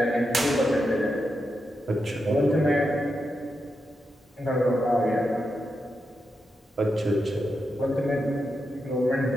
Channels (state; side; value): normal; both; correlation 0.86